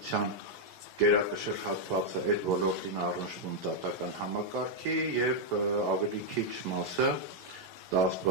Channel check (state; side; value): normal; both; correlation -0.02